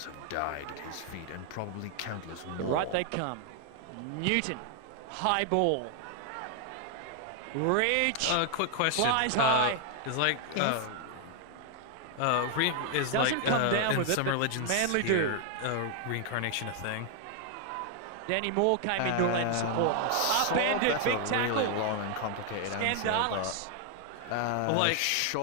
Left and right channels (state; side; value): different; both; correlation 0.00